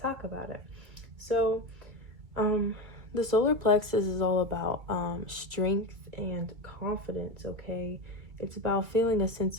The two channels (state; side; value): late; left; 2.3 ms